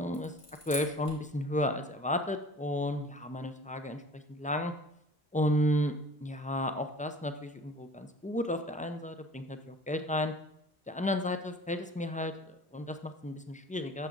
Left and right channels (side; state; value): both; normal; correlation 0.45